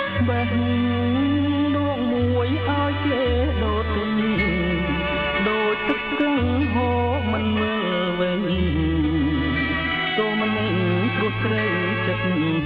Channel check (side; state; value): both; identical; correlation 1.00